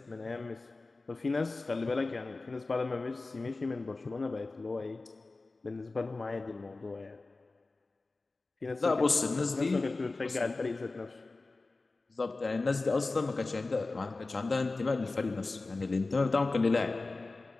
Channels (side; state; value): right; quieter; 3.4 dB